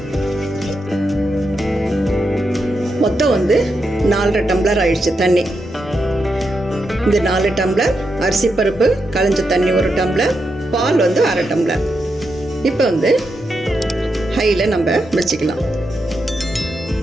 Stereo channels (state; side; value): normal; both; correlation 0.85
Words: மொத்தம் 4.5 டம்ளர் ஆயிடுச்சு தண்ணி. இந்த 4 டம்ளர் அரிசி பருப்பு களைஞ்ச தண்ணி 1 டம்ளர், பால் 1/2 டம்ளர். இப்போ ஹையில் நம்ம வச்சுக்கலாம்.